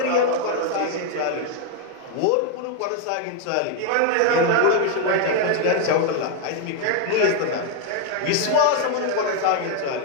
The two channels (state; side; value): different; both; correlation 0.01